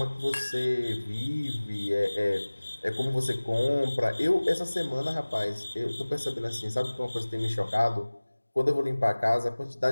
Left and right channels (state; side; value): inverted; both; correlation -1.00